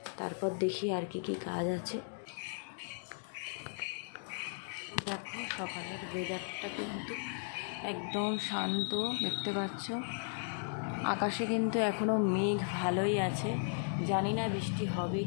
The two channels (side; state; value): right; silent; digital silence